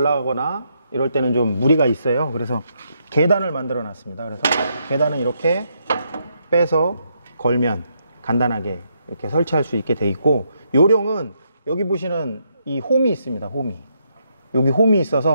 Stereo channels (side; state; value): both; inverted; correlation -0.77